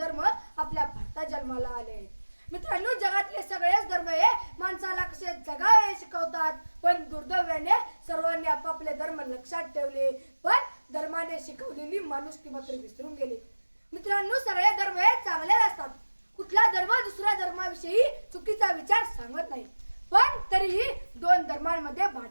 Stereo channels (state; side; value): inverted; both; correlation -1.00